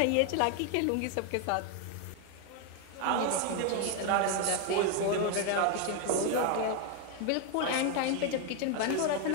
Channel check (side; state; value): both; different; correlation 0.01